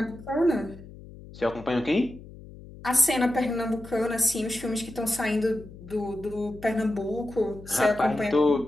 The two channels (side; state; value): left; noise; hum, 17 dB below the sound